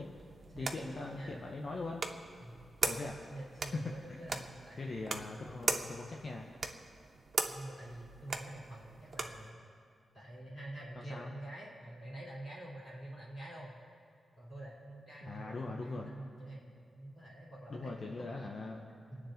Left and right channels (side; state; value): both; normal; correlation 0.89